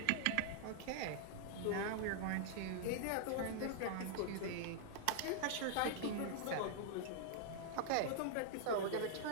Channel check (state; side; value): different; both; correlation -0.01